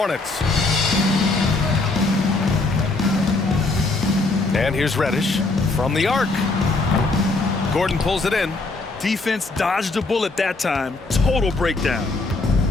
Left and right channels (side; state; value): right; quieter; 3.4 dB